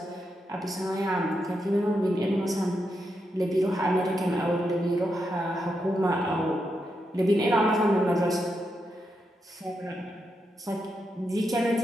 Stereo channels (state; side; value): normal; both; correlation 0.84